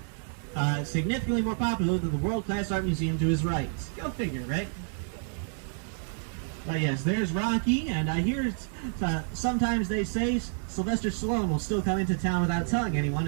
Significantly more popular than the world-class art museum to his right. Go figure, right? But yes, there's Rocky, and I hear sometimes they say Sylvester Stallone will still come into town without telling anyone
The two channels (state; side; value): silent; left; 59 dB below the other